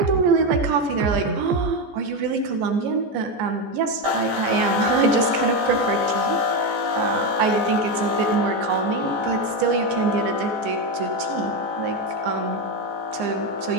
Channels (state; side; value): late; left; 14 ms